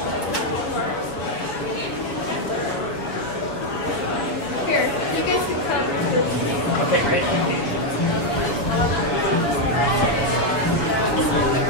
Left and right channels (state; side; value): late; right; 7.1 ms